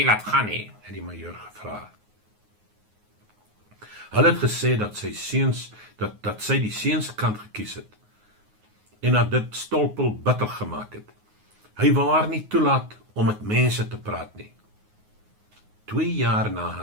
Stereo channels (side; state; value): left; late; 9.5 ms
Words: laat gaan nie, het die majoor gevra. Hulle het gesê dat sy seuns, dat sy die seuns kant gekies het, en dat dit Stolpel bitter gemaak het. Hy wou haar nie toelaat om met mense te praat nie. 2 jaar na